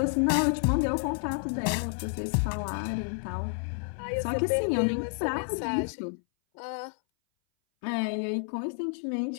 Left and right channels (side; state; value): right; silent; 58 dB below the other